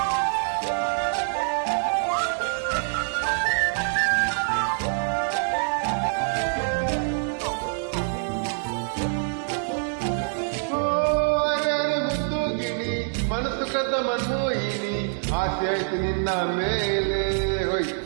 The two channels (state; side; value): silent; left; digital silence